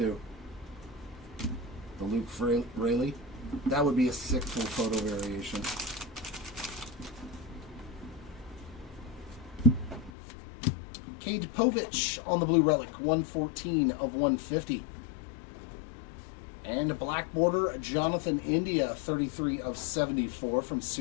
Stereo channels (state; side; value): drops out; right; at 10.1 s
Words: The Luke Rayleigh. That would be a sick full photo variation. Cade Povich on the blue relic, 114 of 150. And a black border, Jonathan India, 33 of 74 from